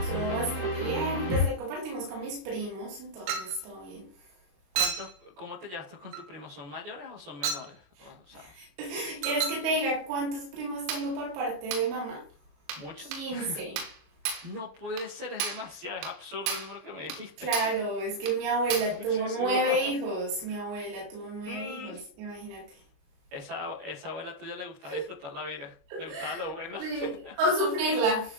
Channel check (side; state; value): left; late; 23 ms